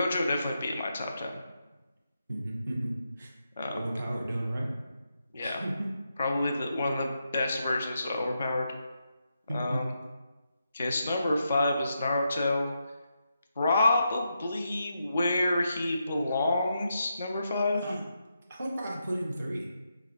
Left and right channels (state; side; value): inverted; both; correlation -0.84